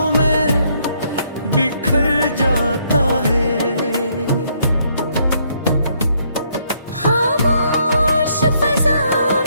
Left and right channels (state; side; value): inverted; both; correlation -0.70